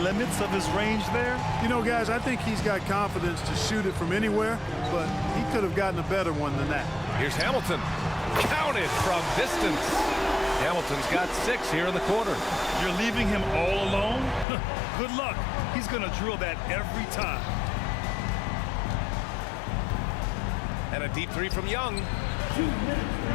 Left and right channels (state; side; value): drops out; right; at 14.5 s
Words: limits of his range there? You know, guys, I think he's got confidence to shoot it from anywhere, but he could have gotten a better one than that. Here's Hamilton. Counted from distance. Hamilton's got 6 here in the quarter. You're leaving him all alone? Good luck. He's going to drill that every time. And a deep three from Young. 2 minutes